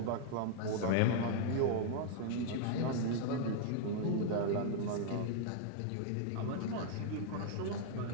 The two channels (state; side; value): different; both; correlation -0.01